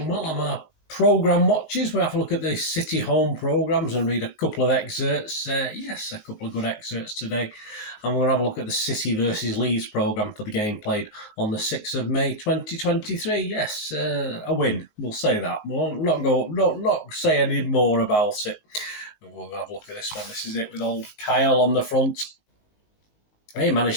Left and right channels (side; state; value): right; late; 19 ms